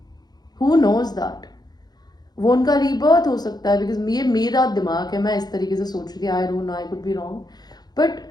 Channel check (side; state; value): right; late; 0.19 ms